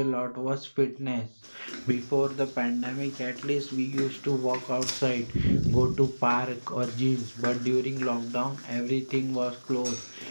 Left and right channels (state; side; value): inverted; both; correlation -1.00